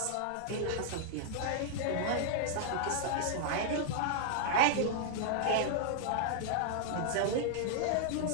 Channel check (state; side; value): different; both; correlation -0.01